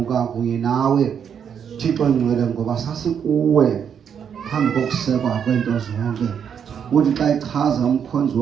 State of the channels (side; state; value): left; quieter; 7.8 dB